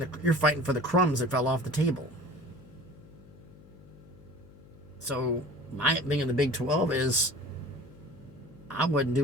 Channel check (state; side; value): noise; left; hum, 22 dB below the sound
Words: for the crumbs that fell off the table. So my thing in the Big 12 is I wouldn't